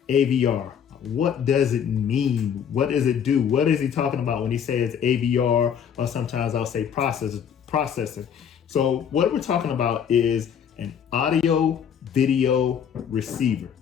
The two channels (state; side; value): quieter; right; 8.1 dB